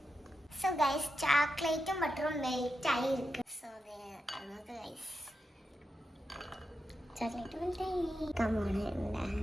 So guys, ചോക്ലേറ്റും ബട്ടറും മെൽറ്റ് ആയി ഇരിക്കും. So നമുക്ക് guys ചോക്ലേറ്റ് മെൽറ്റ് ആയി. Come on.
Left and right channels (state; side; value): normal; both; correlation 0.88